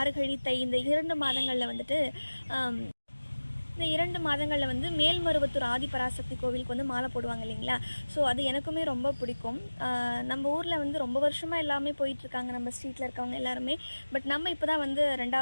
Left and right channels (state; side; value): inverted; both; correlation -1.00